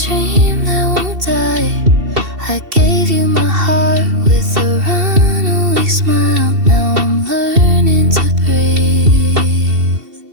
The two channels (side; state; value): left; late; 2.7 ms